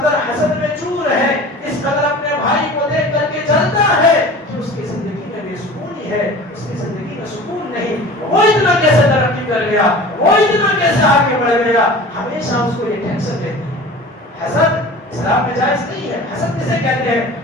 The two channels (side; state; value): both; normal; correlation 0.40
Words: حسد میں چور ہے، اس قدر اپنے بھائی کو دیکھ کر کے جلتا ہے کہ اس کی زندگی میں بے سکونی ہے، اس کی زندگی میں سکون نہیں. وہ اتنا کیسے ترقی کر گیا، وہ اتنا کیسے آگے بڑھ گیا، ہمیشہ اس کو یہ ٹینشن رہتی ہے. حسد اسلام میں جائز نہیں ہے. حسد کسے کہتے ہیں؟